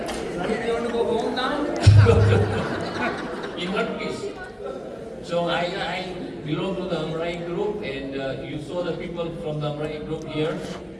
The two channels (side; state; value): both; identical; correlation 1.00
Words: In one piece. So I belong to the Amrai group, and you saw the people from the Amrai group here.